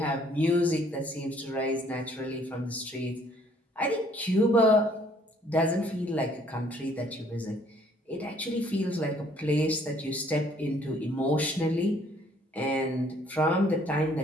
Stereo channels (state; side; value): normal; both; correlation 0.62